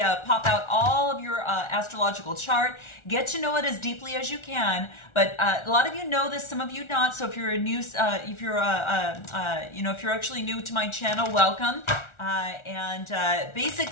out all of your astrological chart. Get to know it as deeply as you can. But a lot of you know this, some of you not. So if you're a new, if you're actually new to my channel, welcome.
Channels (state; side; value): late; right; 1.4 ms